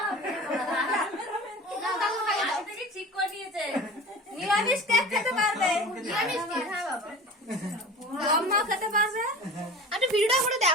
না দাদু খাইয়ে দাও থেকে ঠিক করে দিয়েছে নিরামিষ কে খেতে পারবে নিরামিষ কে হ্যাঁ বাবা আম্মা খেতে পারবে আরে ভিডিওটা করে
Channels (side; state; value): both; normal; correlation 0.37